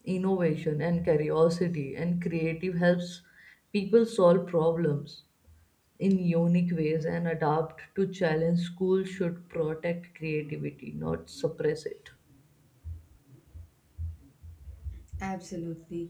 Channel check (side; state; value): both; identical; correlation 1.00